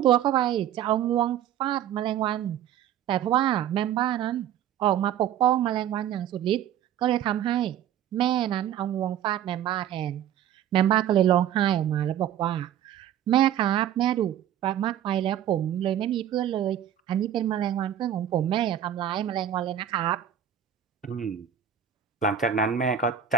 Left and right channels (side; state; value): left; quieter; 10.4 dB